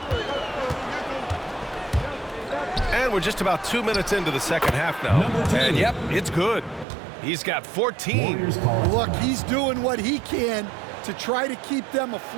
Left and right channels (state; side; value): drops out; left; at 6.9 s